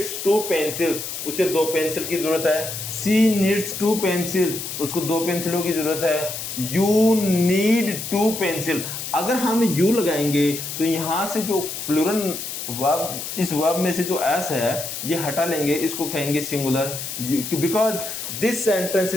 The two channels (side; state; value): left; noise; hiss, 6 dB below the sound